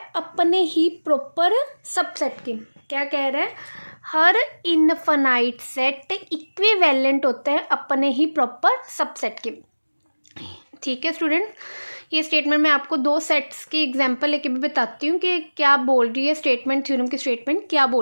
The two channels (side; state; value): both; inverted; correlation -1.00